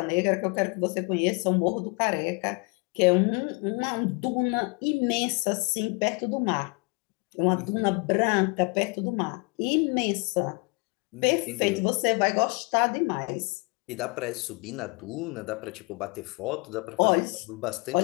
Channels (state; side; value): quieter; right; 31.1 dB